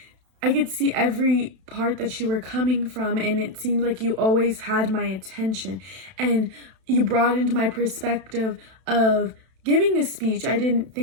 see every part that you were coming from, and it seemed like you always had my attention, and you brought into my perspective of giving a speech. I didn't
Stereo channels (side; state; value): left; late; 32 ms